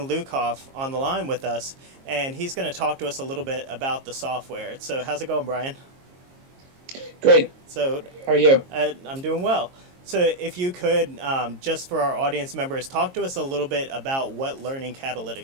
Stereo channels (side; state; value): left; late; 22 ms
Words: Lukoff on the line with us, and he's going to talk to us a little bit about the software. So how's it going, Brian? Great. So how are you? I'm doing well. So if you could, just for our audience members, talk to us a little bit about what Learning